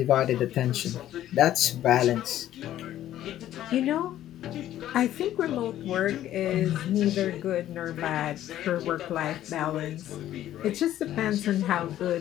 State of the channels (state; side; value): quieter; right; 12.6 dB